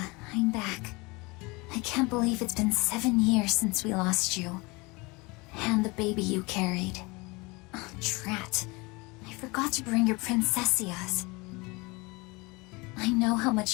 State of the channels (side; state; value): right; quieter; 25.7 dB